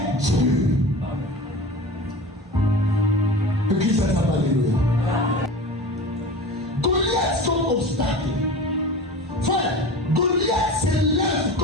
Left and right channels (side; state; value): both; normal; correlation 0.34